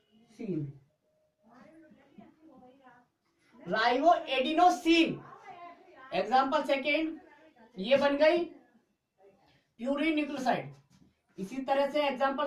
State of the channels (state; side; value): identical; both; correlation 1.00